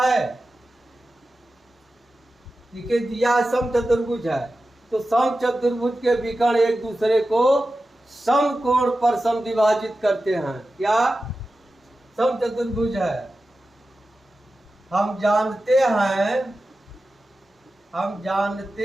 देखिए दिया है सम चतुर्भुज है, तो सम चतुर्भुज के विकर्ण एक दूसरे को समकोण पर समद्विभाजित करते हैं। क्या सम चतुर्भुज है, हम जानते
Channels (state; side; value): normal; both; correlation 0.93